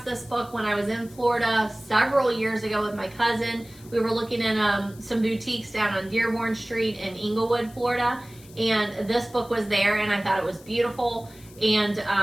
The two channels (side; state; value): left; noise; hiss, 23 dB below the sound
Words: book when I was in Florida several years ago with my cousin. We were looking in some boutiques down on Dearborn Street in Inglewood, Florida. And this book was there, and I thought it was beautiful.